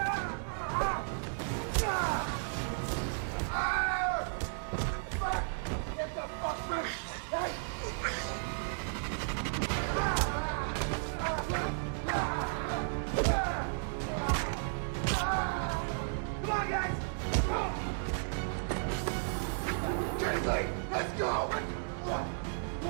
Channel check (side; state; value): left; silent; digital silence